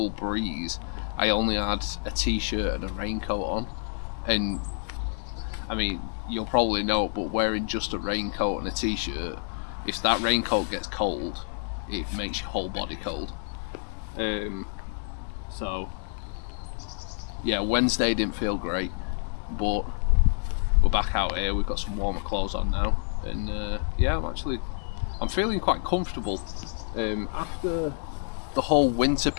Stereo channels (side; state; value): right; silent; 56 dB below the other